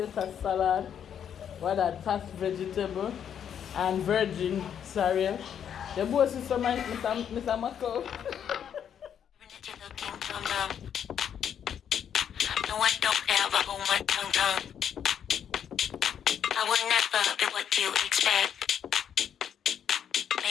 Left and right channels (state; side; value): quieter; right; 8.7 dB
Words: salad, what that tossed vegetable, and virgin cereal. The boss is some Mr. Mako. No, I don't ever hold my tongue. I will never be what you expect.